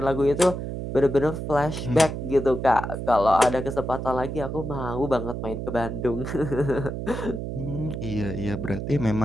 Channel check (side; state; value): right; noise; hum, 5 dB below the sound